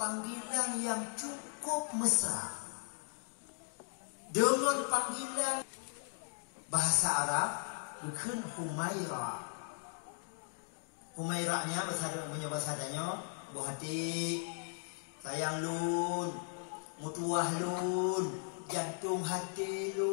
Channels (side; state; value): right; silent; 53 dB below the other